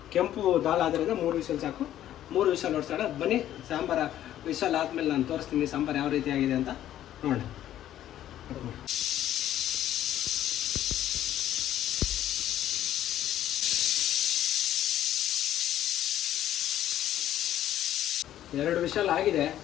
ಕೆಂಪು ದಾಲ್ ಆದ್ದರಿಂದ 3 ವಿಷಲ್ ಸಾಕು. 3 ವಿಷಲ್ ಓಡಿಸೋಣ. ಬನ್ನಿ, ಸಾಂಬಾರು ವಿಷಲ್ ಆದಮೇಲೆ ನಾನು ತೋರಿಸ್ತೀನಿ ಸಾಂಬಾರು ಯಾವ ರೀತಿ ಆಗಿದೆ ಅಂತ ನೋಡೋಣ. ಎರಡು ವಿಷಲ್ ಆಗಿದೆ.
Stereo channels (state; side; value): quieter; right; 12.1 dB